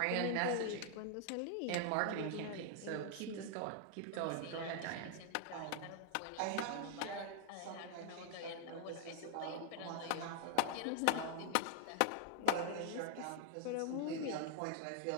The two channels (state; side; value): different; both; correlation 0.00